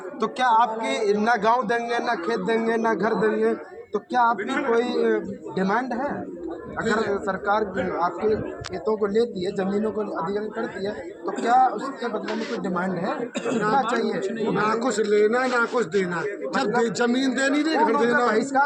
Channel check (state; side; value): identical; both; correlation 1.00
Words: तो क्या आपके ना गांव देंगे, ना खेत देंगे, ना घर देंगे, तो क्या आपकी कोई डिमांड है? अगर सरकार आपके खेतों को लेती है, जमीनों को अधिग्रहण करती है, तो क्या उसके बदले में कोई डिमांड है? कितना चाहिए? ना कुछ लेना ना कुछ देना। जब जमीन देनी नहीं, घर देना,